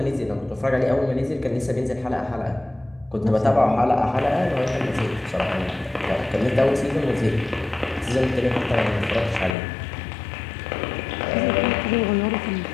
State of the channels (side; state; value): right; drops out; at 9.6 s